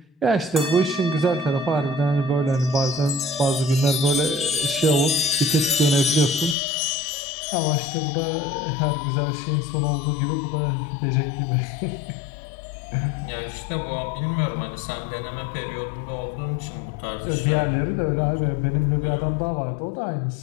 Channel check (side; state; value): right; drops out; at 6.6 s